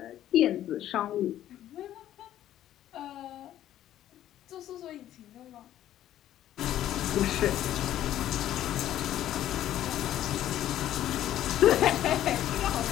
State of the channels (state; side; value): quieter; right; 12.3 dB